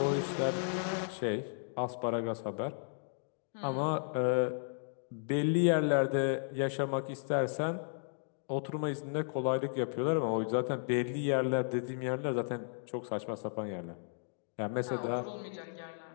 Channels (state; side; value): silent; right; digital silence